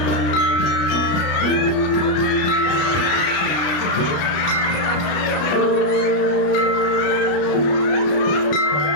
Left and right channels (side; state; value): right; late; 33 ms